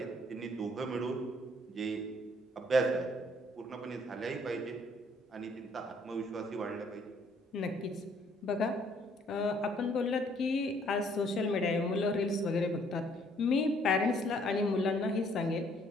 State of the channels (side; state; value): both; normal; correlation 0.64